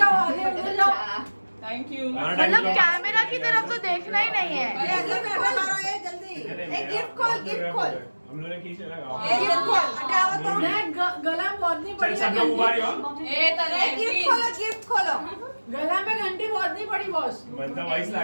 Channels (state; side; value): inverted; both; correlation -1.00